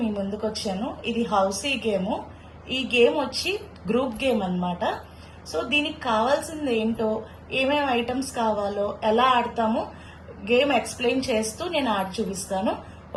మీ ముందుకు వచ్చాను. ఇది హౌసీ గేమ్. ఈ గేమ్ వచ్చి గ్రూప్ గేమ్ అన్నమాట. సో దీనికి కావాల్సింది ఏంటో, ఏమేమి ఐటమ్స్ కావాలో, ఎలా ఆడతామో గేమ్ ఎక్స్ప్లెయిన్ చేస్తూ నేను ఆడి చూపిస్తాను.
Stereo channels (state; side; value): identical; both; correlation 1.00